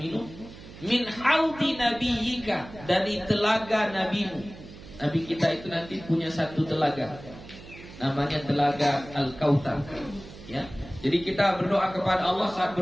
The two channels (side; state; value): right; noise; hum, 17 dB below the sound